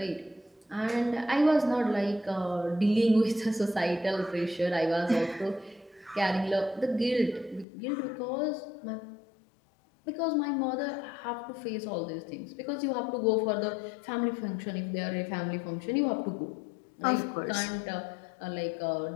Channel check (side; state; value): right; drops out; at 7.7 s